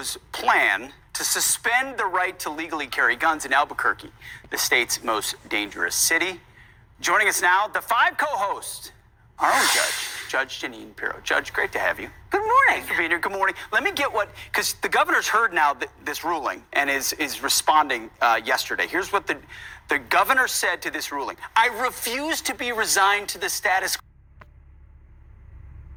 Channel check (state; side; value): identical; both; correlation 1.00